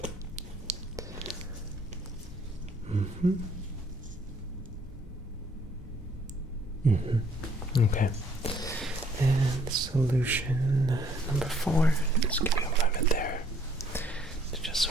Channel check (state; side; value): normal; both; correlation 0.63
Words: Okay. And solution number 4. Just give you a moment there to just